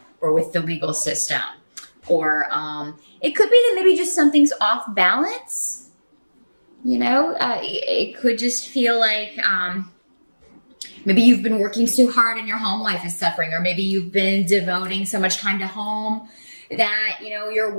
or with the legal system, or it could be that maybe just something's off balance. It could just feel like maybe you've been working so hard and your home life is suffering, or maybe you've been devoting so much time to home that your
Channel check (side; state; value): both; inverted; correlation -1.00